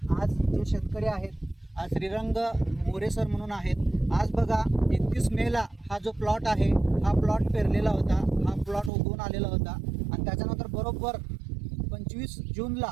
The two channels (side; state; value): left; drops out; at 8.9 s